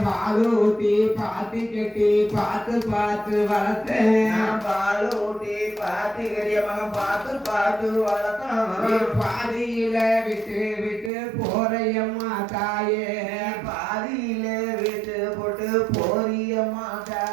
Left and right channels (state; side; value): drops out; left; at 11.1 s